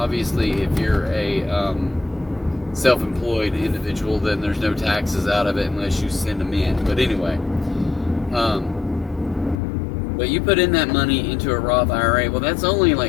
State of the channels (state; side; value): drops out; right; at 9.6 s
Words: if you're a self-employed individual, then there's no taxes out of it unless you send them in. But anyway, but you put in that money into a Roth IRA, well, that's only